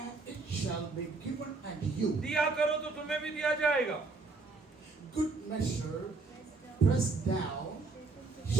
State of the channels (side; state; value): left; quieter; 3.9 dB